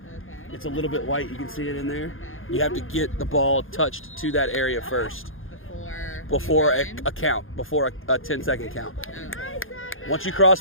Okay. It's a little bit white. You can see it in there. You have to get the ball touched to that area first before a count, before a 10-second count. Okay. Once you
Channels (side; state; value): right; late; 0.59 ms